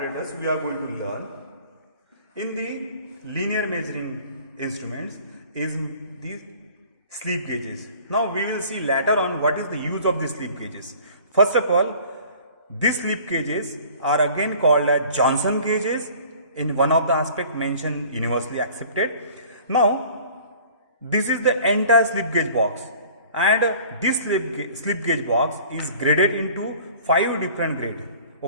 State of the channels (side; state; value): both; inverted; correlation -0.49